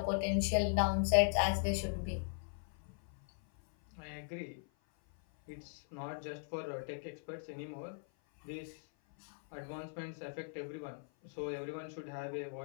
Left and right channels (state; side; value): silent; right; 52 dB below the other